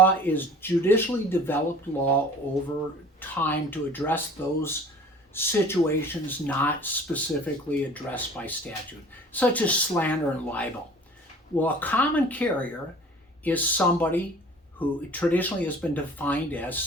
is judicially developed law over time to address those situations not specifically addressed by statute, such as slander and libel. Well, a common carrier is somebody who traditionally has been defined as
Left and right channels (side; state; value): both; normal; correlation 0.46